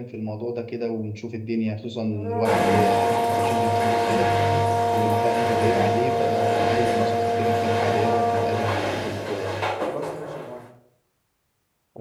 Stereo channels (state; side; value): identical; both; correlation 1.00